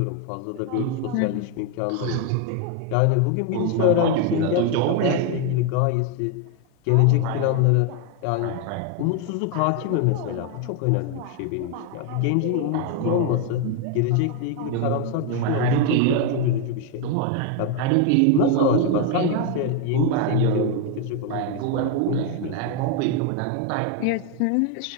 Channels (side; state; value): both; different; correlation 0.01